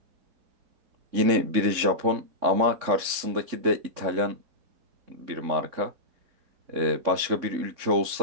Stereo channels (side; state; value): left; late; 3.6 ms